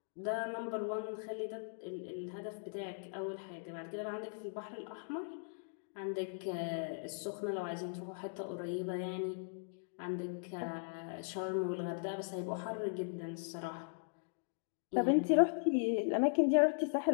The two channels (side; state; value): right; silent; digital silence